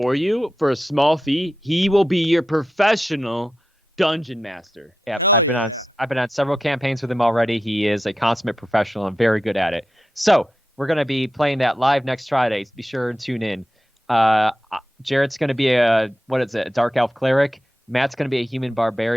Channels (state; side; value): normal; both; correlation 0.90